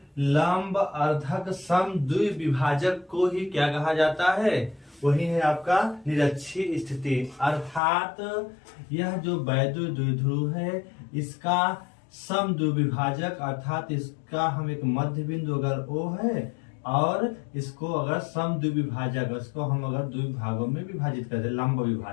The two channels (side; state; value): right; drops out; at 7.8 s